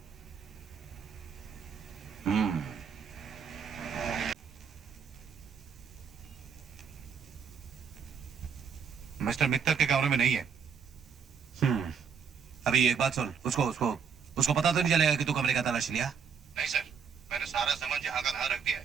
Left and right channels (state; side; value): quieter; left; 6.5 dB